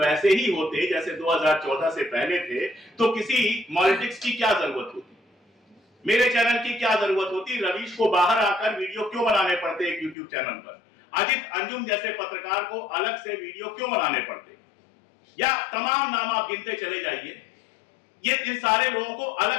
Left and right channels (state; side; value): drops out; right; at 10.2 s